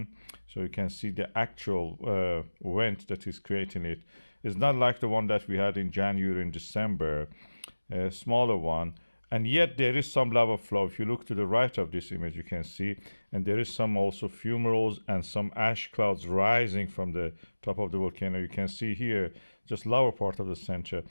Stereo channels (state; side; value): inverted; both; correlation -1.00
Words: so you can see the actual vent that is creating it. It's not like the one that we had in January and December, a smaller one. And yet there is some lava flow. If you look to the right of this image, you can see, and there is some also fumaroles and some ash clouds rising from the top of the volcano. You can see here, just lower part of the center.